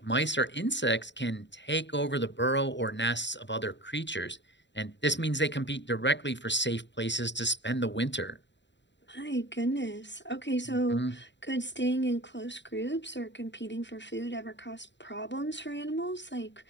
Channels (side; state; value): right; late; 0.52 ms